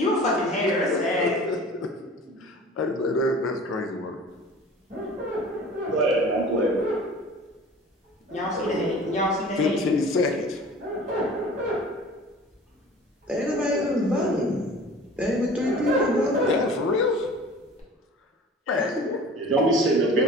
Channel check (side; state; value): both; normal; correlation 0.43